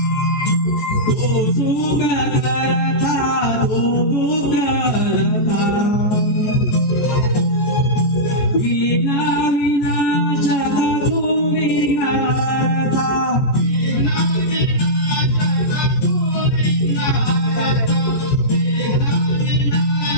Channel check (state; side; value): late; right; 14 ms